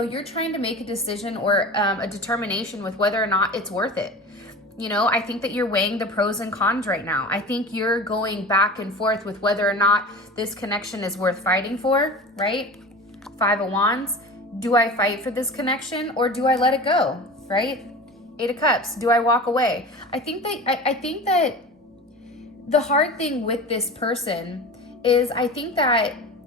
you're trying to make a decision or a determination with whether or not it's worth it. You know, I think that you're weighing the pros and cons right now. I think you're going back and forth with whether or not this connection is worth fighting for, right? Five of Wands. Do I fight for this connection, or do I let it go, right? Eight of Cups. Do I walk away? I think that the hard thing with this person is, I think that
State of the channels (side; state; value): both; normal; correlation 0.33